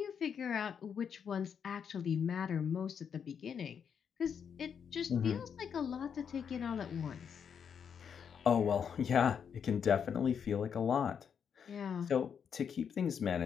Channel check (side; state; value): right; quieter; 7.3 dB